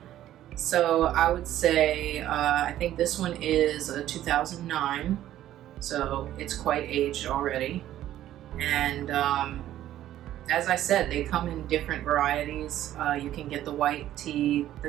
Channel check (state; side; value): quieter; left; 12.8 dB